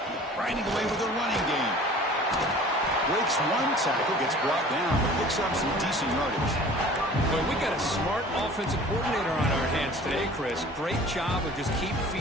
Grinding away with a running game. Breaks one tackle, gets brought down, but picks up some decent yardage. Well, we got a smart offensive coordinator on our hands today, Chris. Great job of just keep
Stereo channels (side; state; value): both; normal; correlation 0.46